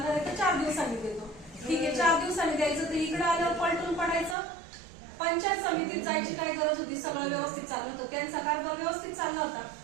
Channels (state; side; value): drops out; left; at 4.4 s